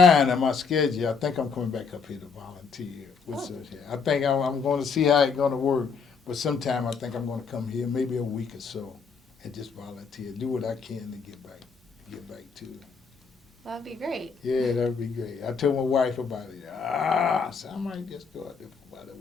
and my schedule. I think I'm coming back up here to volunteer. I think I'm going to see how it's going to work. But sometime I think I'm going to come here, maybe a week or so, and just volunteer, do what I can to get back to it. That'd be great. Yeah, that'd be great. I told my wife about it. So I might just go out there for about a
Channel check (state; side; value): quieter; right; 5.4 dB